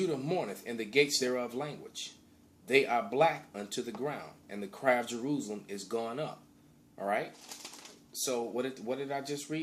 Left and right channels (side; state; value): both; identical; correlation 1.00